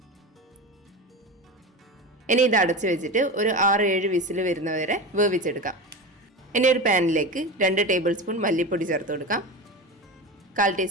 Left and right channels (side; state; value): both; normal; correlation 0.25